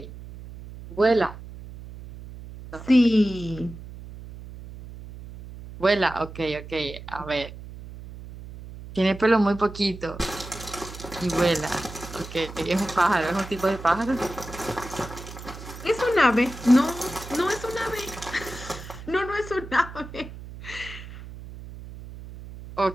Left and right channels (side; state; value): right; noise; hum, 14 dB below the sound